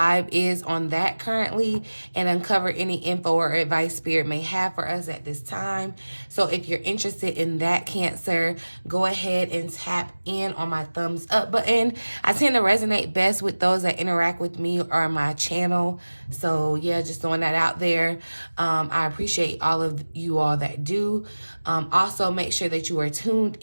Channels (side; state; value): both; inverted; correlation -1.00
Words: is on that currently and uncover any info or advice Spirit may have for us at this time. So if you're interested in that, Cancer, go ahead and tap in on my thumbs up button. I tend to resonate best with those that interact with me or my channel. So yeah, just throwing that out there. I appreciate all of you all that do. Also, make sure that you are tuned